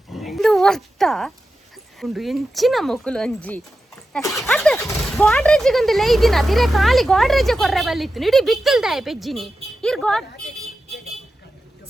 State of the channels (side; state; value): both; normal; correlation 0.91